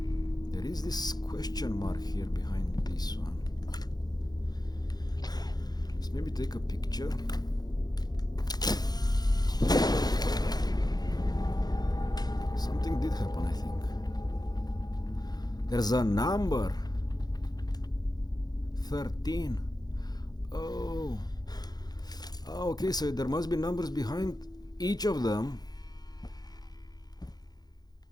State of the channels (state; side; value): late; right; 0.19 ms